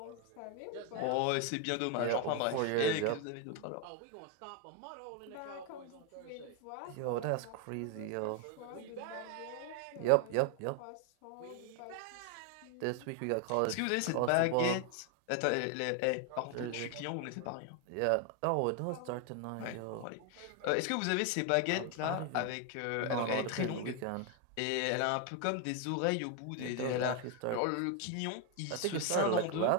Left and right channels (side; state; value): both; different; correlation 0.01